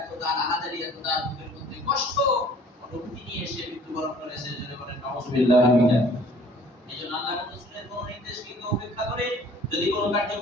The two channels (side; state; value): both; normal; correlation 0.53